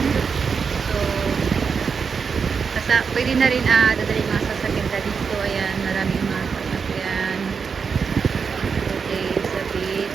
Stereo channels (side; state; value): left; quieter; 5.8 dB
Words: So, pwede na rin dadalhin mga sasakyan na dito. Ayan, maraming mga sasakyan. Okay, sa